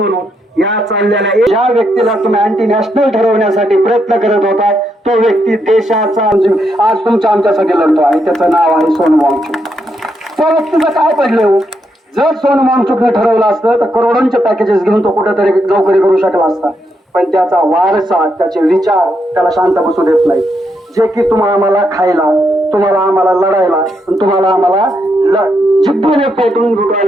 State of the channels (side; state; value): both; normal; correlation 0.80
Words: या चाललेल्या ज्या व्यक्तीला तुम्ही अँटी नॅशनल ठरवण्यासाठी प्रयत्न करत होता तो व्यक्ती देशाचा आज तुमच्या आमच्यासाठी लढतो आहे. त्याचं नाव आहे सोनम वांगचुक. त्या व्यक्तीचं काय पडलं हो? जर सोनम वांगचुकने ठरवलं असतं तर करोडोंचे पॅकेजेस घेऊन तो कुठेतरी नोकरी करू शकला असता. पण त्याचा वारसा, त्याचे विचार त्याला शांत बसू देत नाही. जे की तुम्हाला आम्हाला खायला, तुम्हाला आम्हाला लढायला, तुम्हाला आम्हाला जिद्दीने पेटून